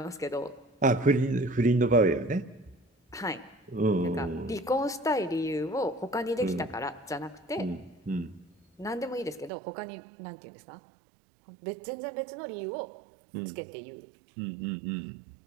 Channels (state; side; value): drops out; left; at 9.5 s